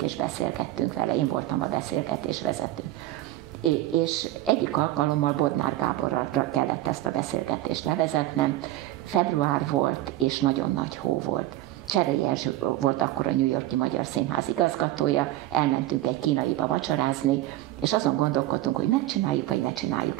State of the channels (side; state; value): left; quieter; 15.8 dB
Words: és beszélgettünk vele, én voltam a beszélgetés vezető. És egyik alkalommal Bodnár Gáborra kellett ezt a beszélgetést levezetnem. Február volt, és nagyon nagy hó volt. Cserei Erzső volt akkor a New York-i Magyar Színház igazgatója, elmentünk egy kínaiba vacsorázni, és azon gondolkodtunk, hogy megcsináljuk, vagy ne csináljuk